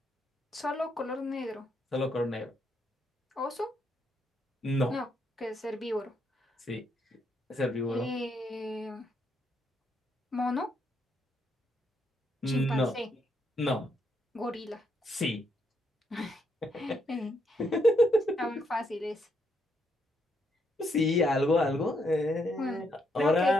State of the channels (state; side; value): normal; both; correlation 0.76